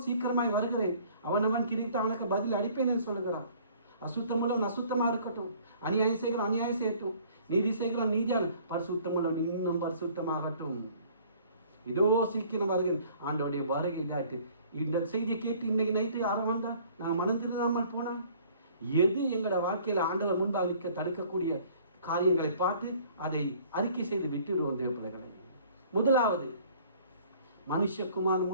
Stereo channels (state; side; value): inverted; both; correlation -0.55